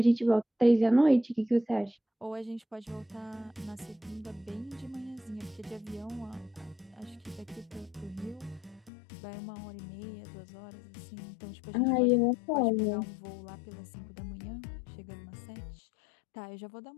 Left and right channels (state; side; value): drops out; right; at 8.9 s